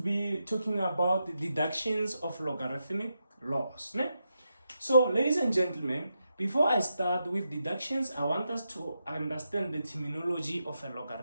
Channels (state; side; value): inverted; both; correlation -0.86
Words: talking about the deductions of logarithmic laws. Ne? So, ladies and gentlemen, before I start with deductions, I want us to understand the terminology of a